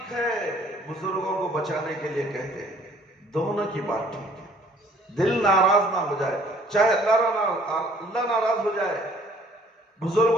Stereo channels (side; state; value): both; normal; correlation 0.58